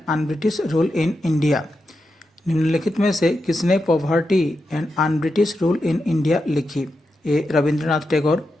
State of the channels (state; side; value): normal; both; correlation 0.88